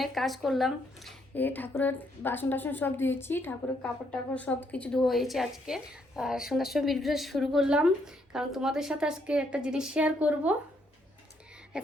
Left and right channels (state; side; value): normal; both; correlation 0.73